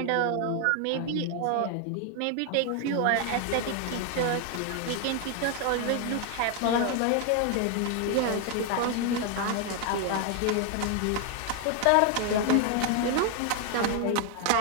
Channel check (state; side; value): different; both; correlation 0.01